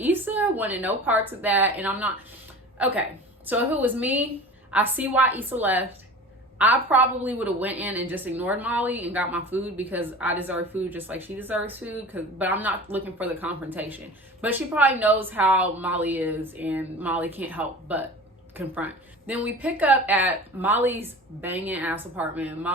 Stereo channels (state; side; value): normal; both; correlation 0.37